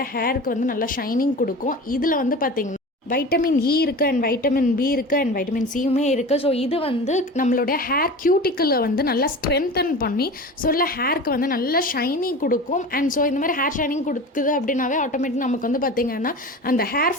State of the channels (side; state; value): both; normal; correlation 0.33